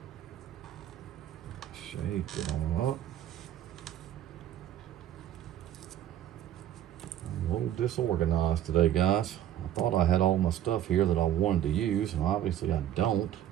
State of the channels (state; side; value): quieter; left; 11.5 dB